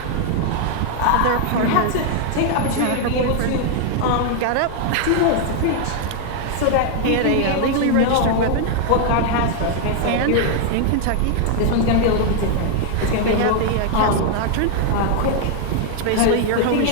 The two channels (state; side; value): different; both; correlation 0.00